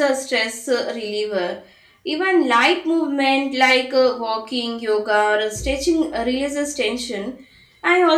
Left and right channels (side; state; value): both; identical; correlation 1.00